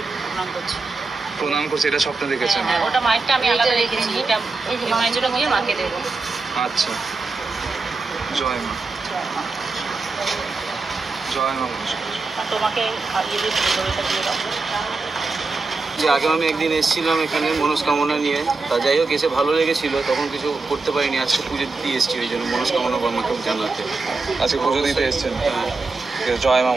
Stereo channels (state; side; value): quieter; left; 3.9 dB